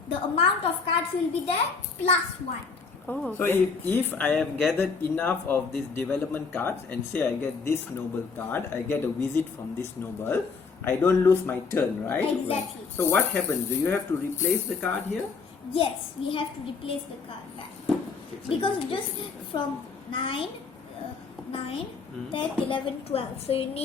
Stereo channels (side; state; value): right; quieter; 4.9 dB